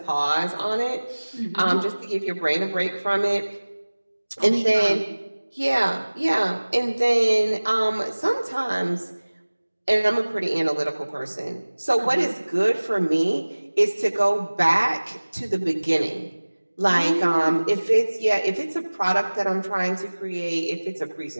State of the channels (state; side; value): inverted; both; correlation -1.00